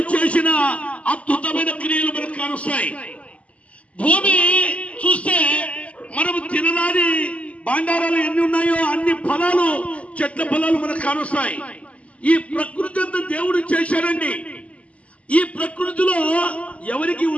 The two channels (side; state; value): right; late; 0.065 ms